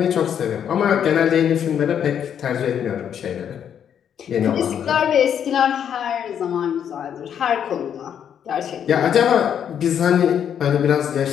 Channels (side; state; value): right; quieter; 8.7 dB